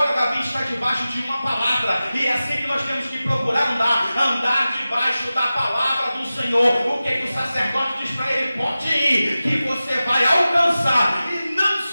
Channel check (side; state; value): both; inverted; correlation -0.95